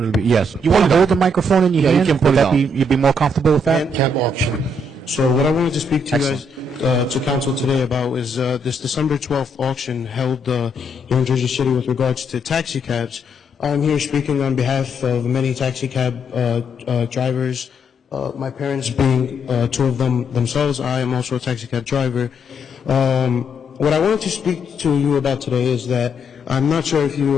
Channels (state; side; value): normal; both; correlation 0.74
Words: bit? Yes. You want to hold the microphone in your hand? You can put it on. You'd be more comfortable with that? Cab auction. So what I wanted to speak to you guys, to Council today about is this December 12th auction held here in Jersey City with regards to taxi cabs. I'm here speaking on behalf of many taxi cab drivers, my parents being two of them themselves. I am also a taxi cab driver. What I wanted to speak to you about today is that I'm not sure if